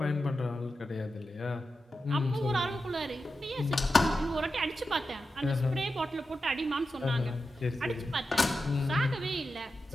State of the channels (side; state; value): both; normal; correlation 0.90